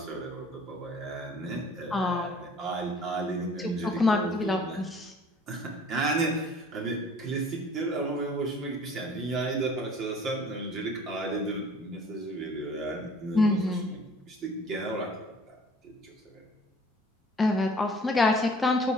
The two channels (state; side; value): normal; both; correlation 0.51